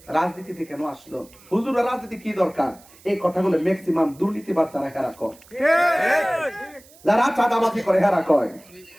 রাজনীতিতে কেন আসলো? হুজুর রাজনীতি কি দরকার? এই কথাগুলো ম্যাক্সিমাম দুর্নীতিবাদ যারা হেরা কয়, যারা চাঁদাবাজি করে হেরা কয়,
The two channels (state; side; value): noise; right; hiss, 25 dB below the sound